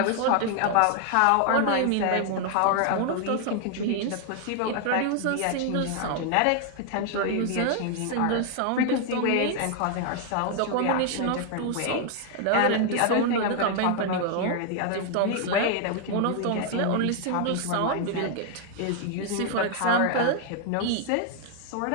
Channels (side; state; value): both; different; correlation 0.00